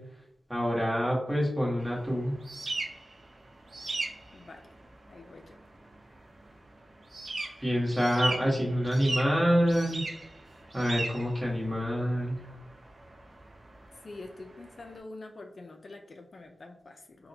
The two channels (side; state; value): both; normal; correlation 0.96